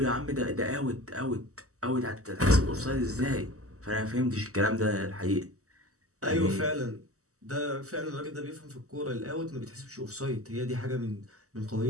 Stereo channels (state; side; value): late; left; 0.65 ms